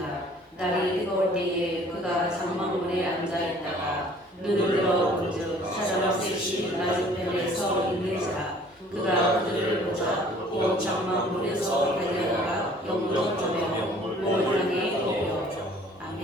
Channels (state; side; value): normal; both; correlation 0.54